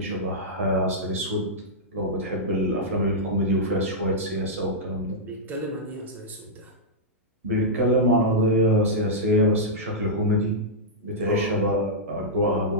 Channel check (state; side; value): normal; both; correlation -0.11